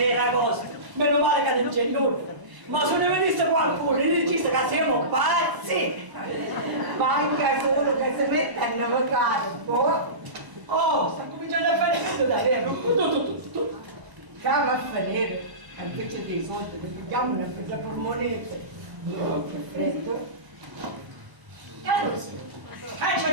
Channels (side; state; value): left; late; 1.0 ms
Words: Meno male che non c'è nulla. Ma se ne venisse qualcuno e dice che siamo pazzi. Manca solo che si mette a navigare un po'. Oh, sta cominciando a fare tutto da vero. Tu. Cava a fare, invece dei soldi, vediamo una per la polmonetta. Che freddo.